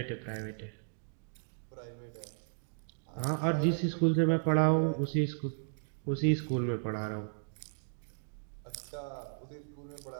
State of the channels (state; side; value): silent; left; digital silence